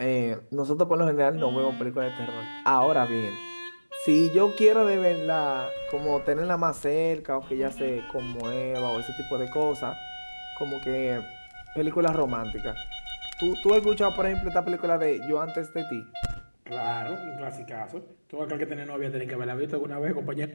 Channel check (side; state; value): both; inverted; correlation -1.00